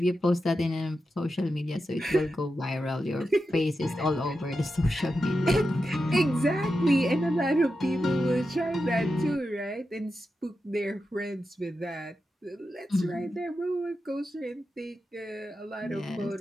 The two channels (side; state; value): both; normal; correlation 0.89